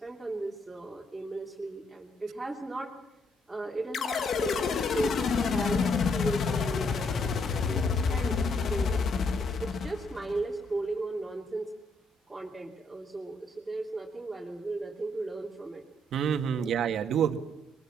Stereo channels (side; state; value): both; normal; correlation 0.72